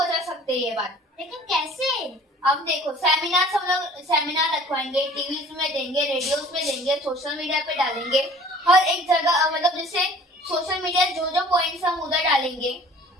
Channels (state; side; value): normal; both; correlation 0.49